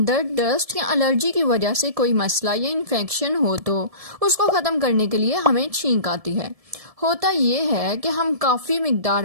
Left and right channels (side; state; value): left; late; 1.7 ms